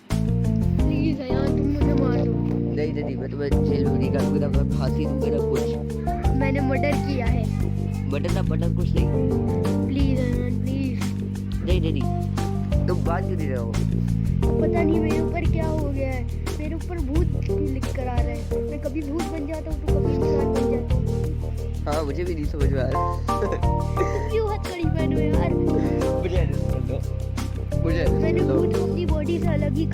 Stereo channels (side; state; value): both; identical; correlation 1.00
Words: प्लीज यार तुम मुझे मार दो। नहीं मैं तुम्हें जेल में नहीं डालूंगा, मैं फांसी दूंगा ना कुछ। मैंने मर्डर किया है। बटन कुछ नहीं। प्लीज यार प्लीज। नहीं तुम बात क्यों नहीं रहे हो? पता नहीं मेरे ऊपर क्या हो गया है, मेरे ऊपर भूत लिख कर आ रहा है। मैं कभी भूत बन जाता हूँ तो कभी इंसान बन जाता हूँ। हाँ मुझे भी नहीं समझ में आ रहा। क्यों हथकड़ी पहनो यार? मैंने भूत को अपनी बॉडी से अलग ही